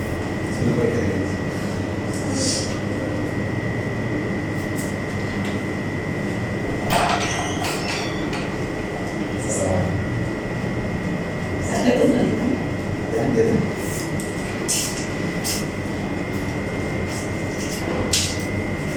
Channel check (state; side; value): identical; both; correlation 1.00